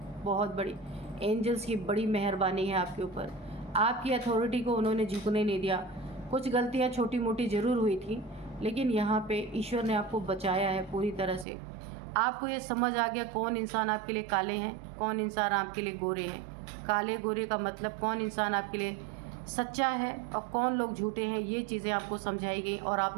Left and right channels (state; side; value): drops out; left; at 11.5 s